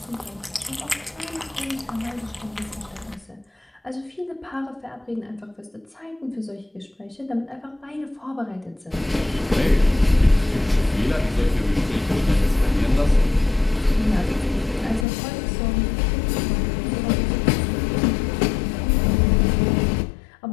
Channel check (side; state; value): right; drops out; at 15.1 s